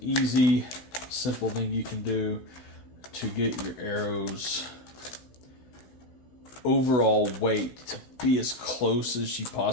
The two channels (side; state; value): right; late; 16 ms